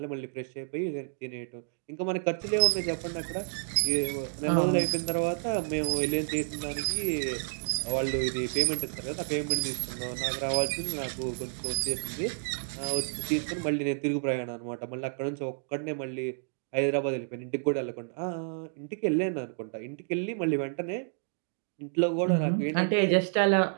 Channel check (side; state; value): left; silent; digital silence